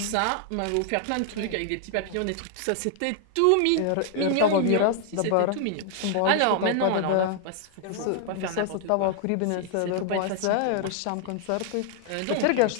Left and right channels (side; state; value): both; different; correlation 0.00